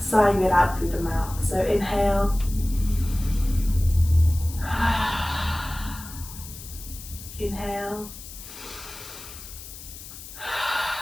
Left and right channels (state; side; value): noise; left; hiss, 14 dB below the sound